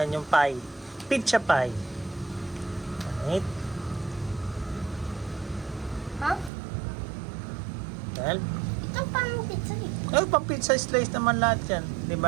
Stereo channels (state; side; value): drops out; left; at 6.5 s